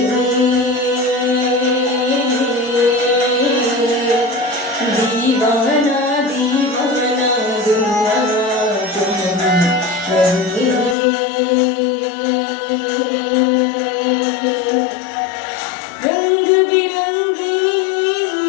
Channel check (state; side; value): drops out; right; at 11.0 s